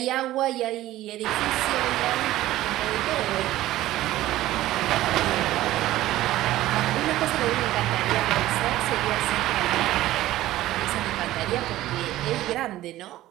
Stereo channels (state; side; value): quieter; left; 15.3 dB